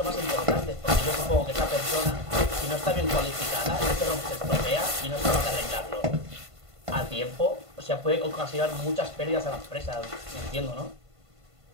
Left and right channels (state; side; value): late; left; 1.5 ms